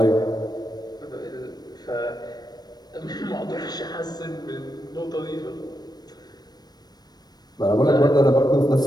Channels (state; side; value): late; right; 0.19 ms